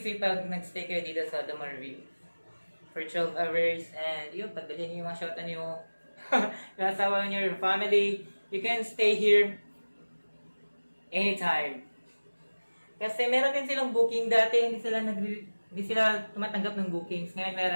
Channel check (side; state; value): both; inverted; correlation -1.00